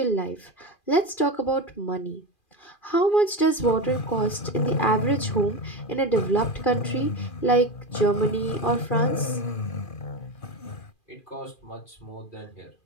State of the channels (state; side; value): late; right; 2.4 ms